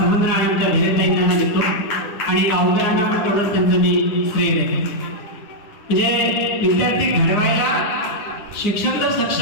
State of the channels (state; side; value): late; right; 10 ms